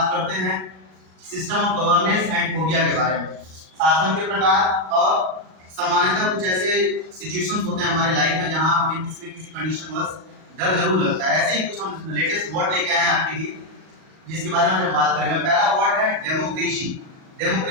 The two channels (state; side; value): late; left; 38 ms